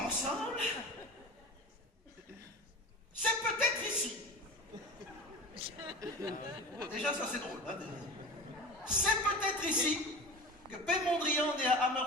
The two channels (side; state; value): both; normal; correlation 0.33